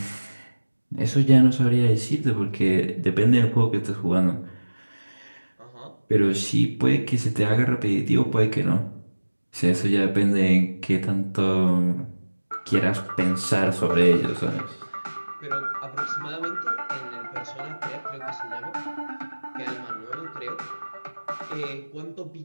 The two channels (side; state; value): both; inverted; correlation -1.00